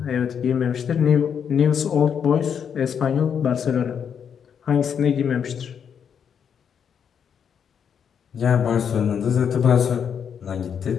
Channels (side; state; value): right; quieter; 7.6 dB